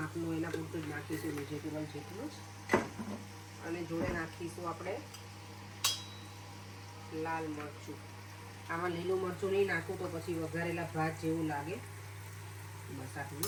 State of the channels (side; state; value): both; identical; correlation 1.00